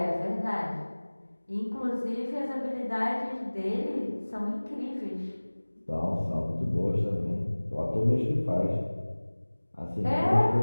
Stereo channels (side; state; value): both; inverted; correlation -1.00